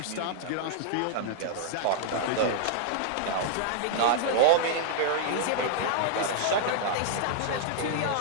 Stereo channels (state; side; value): different; both; correlation -0.01